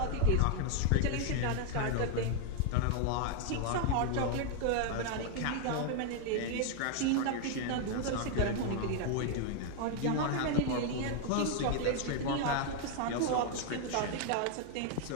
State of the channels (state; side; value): different; both; correlation 0.00